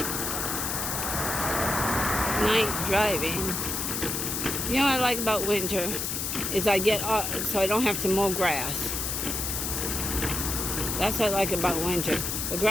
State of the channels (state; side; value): noise; left; hiss, 2 dB below the sound